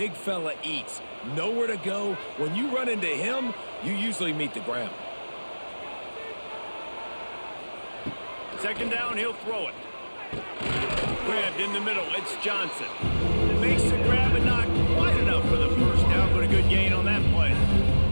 fella eats. Nowhere to go. When you run into him, you usually meet the ground. 2nd down, he'll throw it. Grabbed in the middle, it's Johnson. Makes the grab and not quite enough for the first down, but a good gain on that play.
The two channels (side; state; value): both; inverted; correlation -1.00